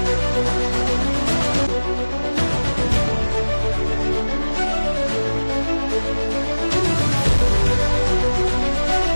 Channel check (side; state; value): both; inverted; correlation -1.00